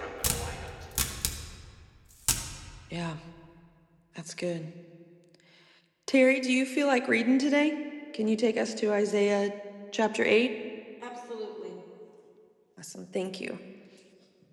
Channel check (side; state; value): both; identical; correlation 1.00